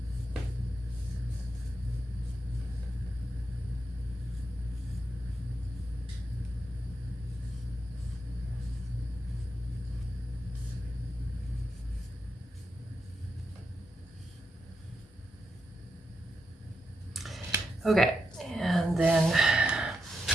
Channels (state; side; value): normal; both; correlation 0.85